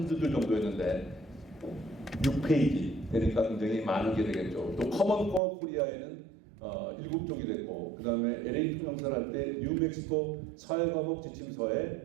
줄 정도였는데 6페이지 되니까 굉장히 많은 게 되겠죠. 또 커먼 코어 코리아에는 7쪽이 됐고 그 다음에 LA 통영사를 할 때 뉴멕시코 사회과목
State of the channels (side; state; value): left; drops out; at 5.4 s